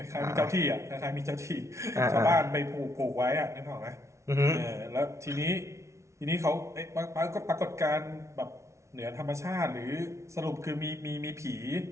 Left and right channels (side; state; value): left; late; 0.14 ms